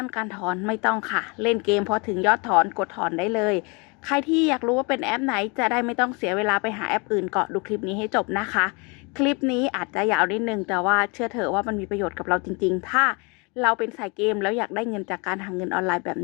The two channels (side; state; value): right; quieter; 30.4 dB